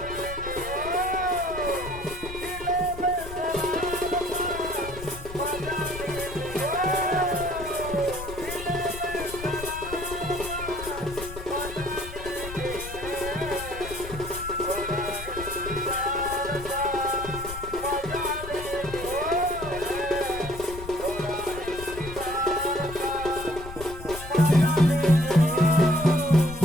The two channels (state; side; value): noise; left; rumble, 11 dB below the sound